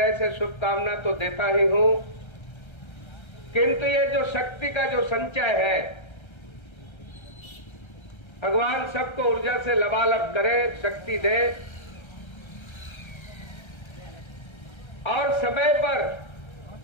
से शुभकामना तो देता ही हूं, किंतु ये जो शक्ति का जो संचय है, भगवान सबको ऊर्जा से लबालब करे, शक्ति दे, और समय पर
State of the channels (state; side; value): late; right; 1.3 ms